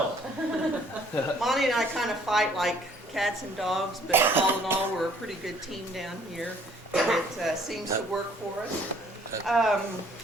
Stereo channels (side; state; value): both; normal; correlation 0.60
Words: Monty and I kind of fight like cats and dogs, but all in all, we're a pretty good team down here, and it seems to work for us.